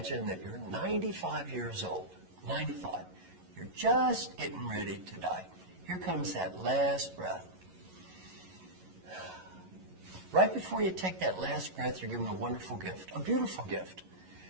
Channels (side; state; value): left; late; 11 ms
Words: that you're 95 years old. 95. You're just getting ready to die. Here comes that last breath. Right before you take that last breath, you're given a wonderful gift, a beautiful gift.